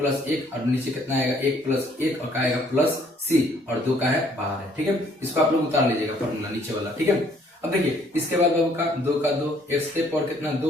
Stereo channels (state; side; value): normal; both; correlation 0.63